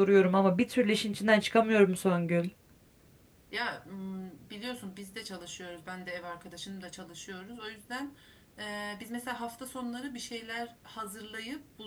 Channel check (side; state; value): both; identical; correlation 1.00